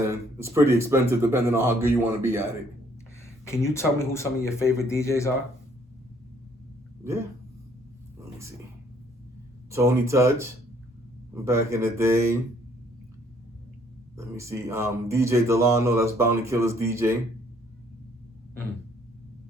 it's pretty expensive depending on how good you want to be at it. Can you tell me who some of your favorite DJs are? Yeah. Let me see. Tony Touch, back in the day. Let me see. DJ Delano, that's Bounty Killer's DJ.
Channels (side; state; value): both; normal; correlation 0.64